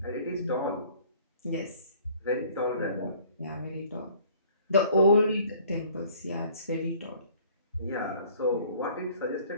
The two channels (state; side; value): inverted; both; correlation -0.54